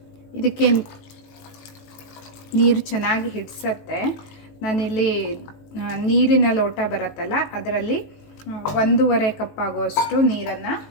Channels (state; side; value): late; right; 19 ms